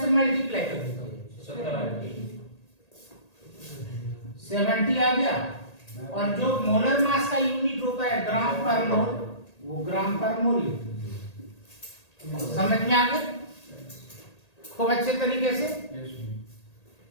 से मल्टीप्लाई कर देते 70 आ गया। और जो मोलर मास का यूनिट होता है ग्राम पर मोल, वो ग्राम पर मोल। समझ में आ गया खूब अच्छे तरीके से?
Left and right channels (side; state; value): right; late; 1.8 ms